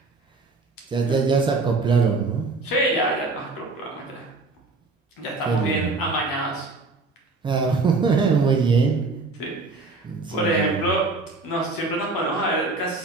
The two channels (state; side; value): quieter; left; 3.6 dB